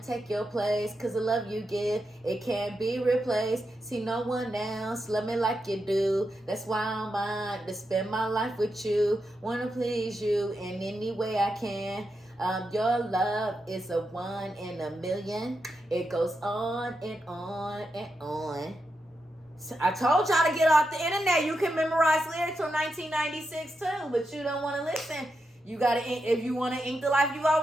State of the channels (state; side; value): normal; both; correlation 0.86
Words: take your place, cause the love you give, it can't be replaced. See no one else love me like you do. That's why I'm mine to spend my life with you. Wanna please you in any way I can. Your love is a 1 in a million. It goes on and on and on. I told y'all to get off the internet. You can memorize lyrics from 1996 too, but you don't want to listen. You gotta, if you want to ink the life you